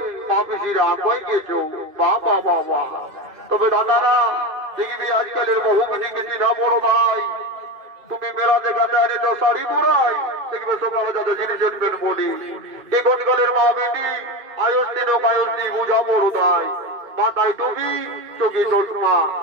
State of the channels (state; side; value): late; left; 2.5 ms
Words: পা পিসিরা আগুয়াই গেছ। বাবা বাবা, তবে দাদারা দেখবি আজকালের বহু কিছু কিছু না বড় ভাই, তুমি মেলা দেখাতে আনে তো শাড়ি পরাই, দেখবে সকালে যত জিনিস আনবেন বলি। এখনকালের মা বেটি আয়স্তিন ও কায়স্তি বুঝা বড় তাই, মাথায় টুপি চোখে চশমা,